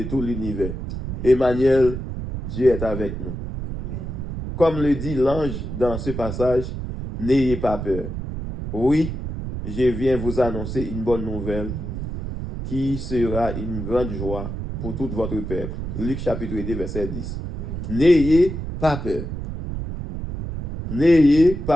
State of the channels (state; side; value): noise; right; rumble, 6 dB below the sound